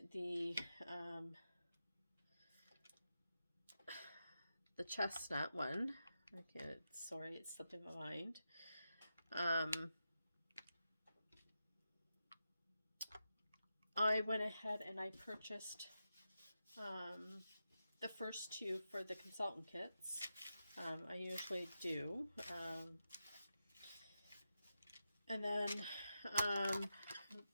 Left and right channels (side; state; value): both; inverted; correlation -0.89